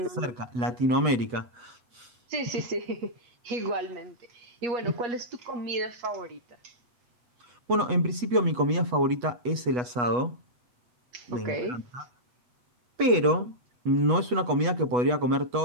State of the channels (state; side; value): late; left; 8.2 ms